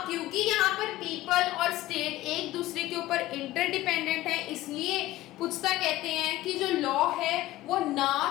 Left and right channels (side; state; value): right; quieter; 16.4 dB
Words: क्योंकि यहाँ पर पीपल और स्टेट एक दूसरे के ऊपर इंटरडिपेंडेंट है, इसलिए पुस्ता कहते हैं कि जो लॉ है वो